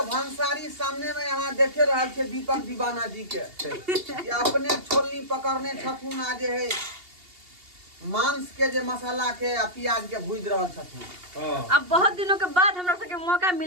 भंसारी सामने में यहाँ देखे रहल छे दीपक दीवाना जी के ये अपने छोलनी पकड़ने छथुन। आ जे है मांस के जे मसाला के आ प्याज के भूज रहल छथुन। हां अब बहुत दिनों के बाद हमरा सबके मौका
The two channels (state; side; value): late; left; 2.8 ms